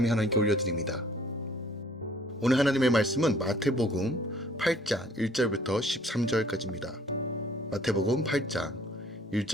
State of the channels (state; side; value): normal; both; correlation 0.57